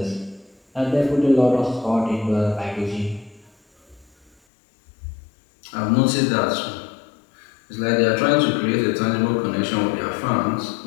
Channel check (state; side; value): drops out; right; at 4.3 s